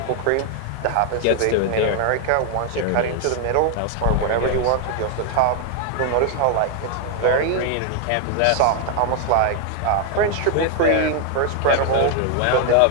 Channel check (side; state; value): both; different; correlation 0.00